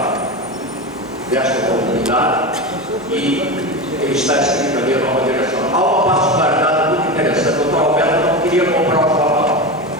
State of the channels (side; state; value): both; normal; correlation 0.21